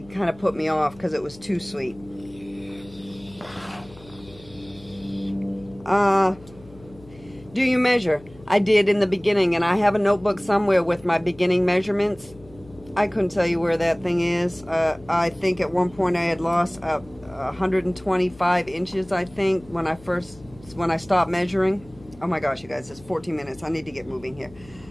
of put me off because it was too sweet. Do you measure? I did in the beginning, and I have a notebook somewhere with my beginning measurements. I couldn't tell you where that thing is. I think at one point I had lost 125 inches, I think, when I stopped measuring. Oh my gosh, you guys, it's 14 minutes. I need to get moving here.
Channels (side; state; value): left; noise; hum, 22 dB below the sound